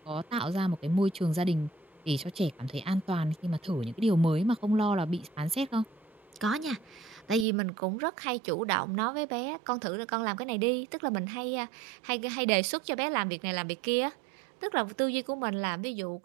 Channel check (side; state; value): left; drops out; at 7.5 s